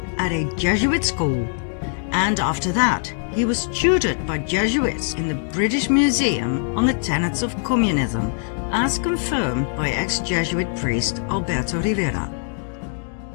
at a Jesuit school, and after that he was tutored by Jesuits in the British Museum on the tenets of communism, as confirmed by ex-Jesuit priest Alberto Rivera.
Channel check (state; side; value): silent; right; 64 dB below the other